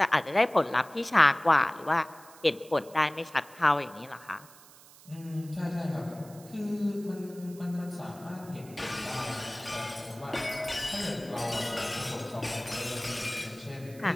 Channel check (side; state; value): right; noise; hiss, 22 dB below the sound